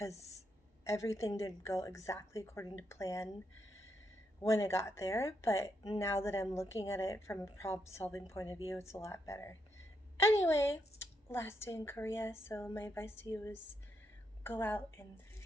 everything didn't go exactly according to plan when I got there. But now that I'm looking at it from a problem solving point of view, it's a lot better. Anyway, last day in Korea, so my advice to you is go out and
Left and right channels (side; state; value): both; normal; correlation 0.80